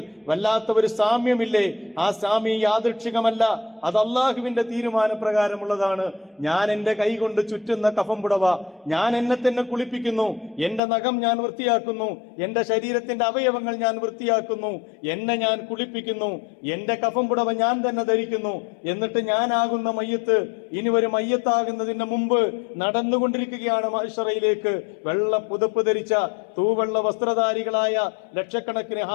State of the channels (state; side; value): drops out; right; at 10.8 s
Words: വല്ലാത്ത ഒരു സാമ്യമില്ലേ? ആ സാമ്യം യാദൃച്ഛികമല്ല, അത് അള്ളാഹുവിന്റെ തീരുമാനപ്രകാരമുള്ളതാണ്. ഞാൻ എന്റെ കൈ കൊണ്ട് ചുറ്റുന്ന കഫം പുടവ, ഞാൻ എന്നെ തന്നെ കുളിപ്പിക്കുന്നു, എന്റെ നഖം ഞാൻ വൃത്തിയാക്കുന്നു, എന്റെ ശരീരത്തിന്റെ അവയവങ്ങൾ ഞാൻ വൃത്തിയാക്കുന്നു, എന്നെ ഞാൻ കുളിപ്പിക്കുന്നു, എന്റെ കഫം പുടവ ഞാൻ തന്നെ ധരിക്കുന്നു. എന്നിട്ട് ഞാനാകുന്ന മയ്യത്ത് ഇനി ഒരു മയ്യത്താകുന്നതിന് മുമ്പ് നടന്നുകൊണ്ടിരിക്കുകയാണ് മഹ്ശറയിലേക്ക്. വെള്ള പുതപ്പ് ധരിച്ച തൂവെള്ള വസ്ത്രധാരികളായ ലക്ഷക്കണക്കിന്